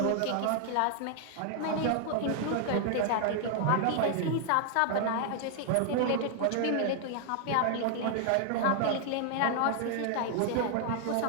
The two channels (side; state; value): both; different; correlation 0.00